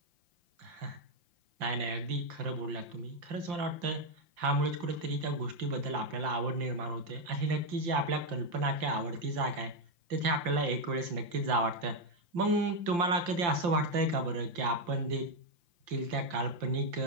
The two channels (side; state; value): left; late; 5.8 ms